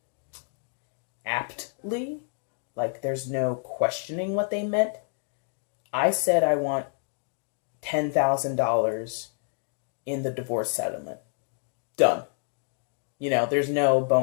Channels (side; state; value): right; silent; 59 dB below the other